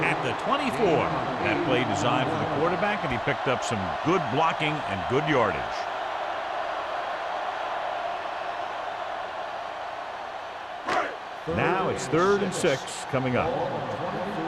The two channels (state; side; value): identical; both; correlation 1.00